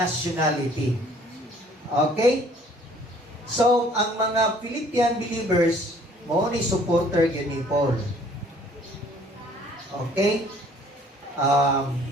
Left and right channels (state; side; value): normal; both; correlation 0.57